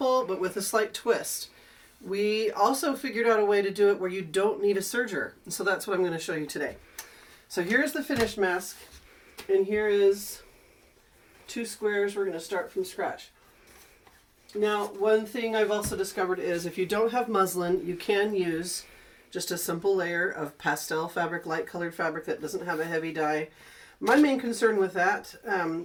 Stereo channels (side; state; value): both; identical; correlation 1.00